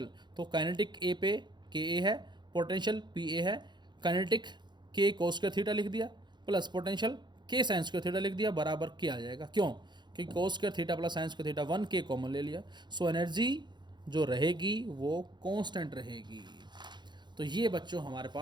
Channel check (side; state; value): left; late; 0.21 ms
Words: तो काइनेटिक ए पे के ए है, पोटेंशियल पी ए है, काइनेटिक के कोस स्क्वायर थीटा लिख दिया प्लस पोटेंशियल के साइन स्क्वायर थीटा लिख दिया, बराबर के आ जाएगा। क्यों, क्योंकि कोस square theta plus sign square theta 1 के कॉमन ले लिया। सो एनर्जी जो रहेगी वो कांस्टेंट रहेगी। तो ये बच्चों हमारे